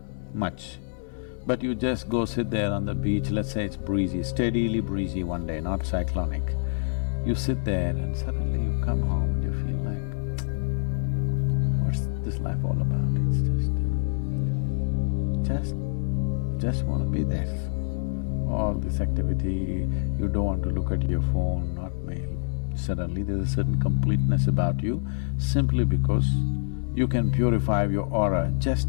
much. But you just go sit there on the beach, let's say it's breezy, steadily breezy one day, not cyclonic. You sit there and suddenly you come home and you feel like, what's this life all about? It's just want to be there. All this activity, you don't want to look at your phone, not mail. Suddenly there's a certain completeness about you simply because you can purify your aura,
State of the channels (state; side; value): silent; right; digital silence